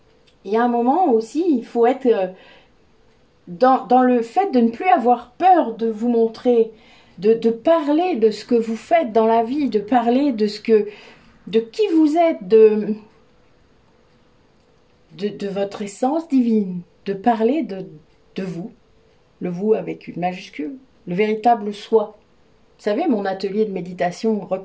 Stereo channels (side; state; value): both; identical; correlation 1.00